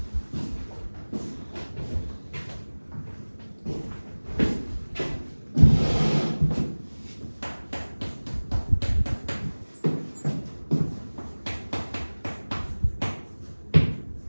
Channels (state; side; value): inverted; both; correlation -1.00